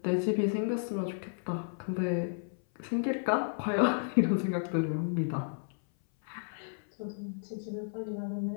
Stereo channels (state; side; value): silent; right; 56 dB below the other